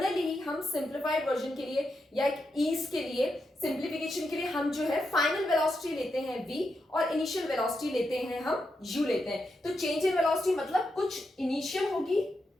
हम सिंप्लीफाइड वर्जन के लिए या एक ईज के लिए, सिंप्लीफिकेशन के लिए हम जो है फाइनल वेलोसिटी लेते हैं v और इनिशियल वेलोसिटी लेते हैं हम u लेते हैं. तो चेंज इन वेलोसिटी मतलब कुछ इनिशियल होगी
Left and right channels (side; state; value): both; normal; correlation 0.85